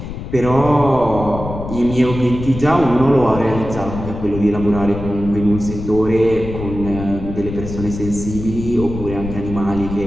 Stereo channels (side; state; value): left; noise; rumble, 8 dB below the sound